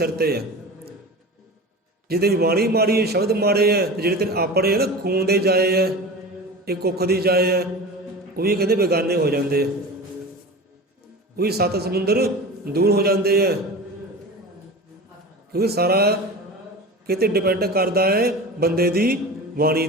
'ਤੇ ਹੈ। ਜੇ ਤੇਰੀ ਬਾਣੀ ਮਾੜੀ ਹੈ, ਸ਼ਬਦ ਮਾੜੇ ਹੈ, ਤੇ ਜਿਹੜੇ ਤੇਰੇ ਆਪਣੇ ਹੈ ਨਾ ਖੂਨ ਦੇ ਜਾਏ ਹੈ, ਇਹ ਕੁੱਖ ਦੀ ਜਾਏ ਹੈ, ਉਹ ਵੀ ਕਹਿੰਦੇ ਬੇਗਾਨੇ ਹੋ ਜਾਂਦੇ ਆ, ਉਹ ਵੀ 7 ਸਮੁੰਦਰ ਦੂਰ ਹੋ ਜਾਂਦੇ ਹੈ। ਕਿਉਂਕਿ ਸਾਰਾ ਕਿਤੇ ਡਿਪੈਂਡ ਕਰਦਾ ਹੈ ਬੰਦੇ ਦੀ ਬਾਣੀ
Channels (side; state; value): both; normal; correlation 0.32